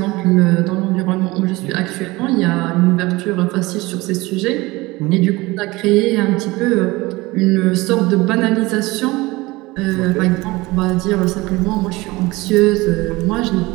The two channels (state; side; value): quieter; left; 21.3 dB